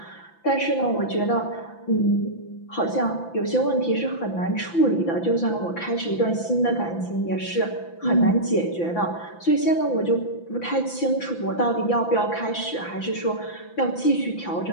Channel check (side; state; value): right; late; 5.9 ms